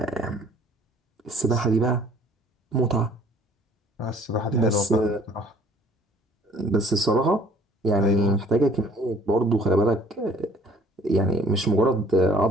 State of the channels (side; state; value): both; normal; correlation 0.55